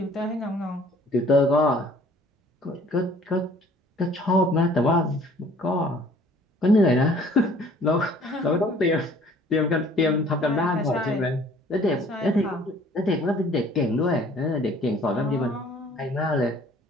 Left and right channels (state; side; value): normal; both; correlation 0.55